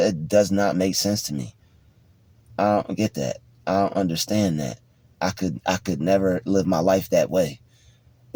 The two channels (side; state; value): both; identical; correlation 1.00